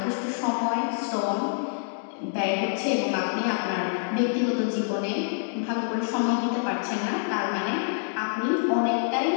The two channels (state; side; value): silent; right; digital silence